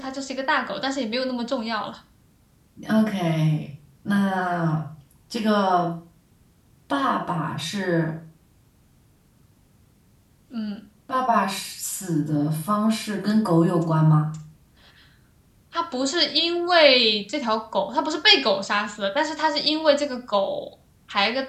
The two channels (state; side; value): identical; both; correlation 1.00